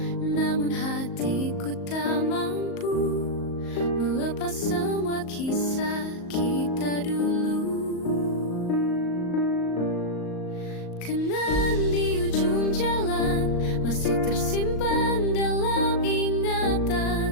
namun hatiku tak mampu melepas semua kisah kita dulu. Kenangan di ujung jalan masih tersimpan dalam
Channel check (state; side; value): late; right; 38 ms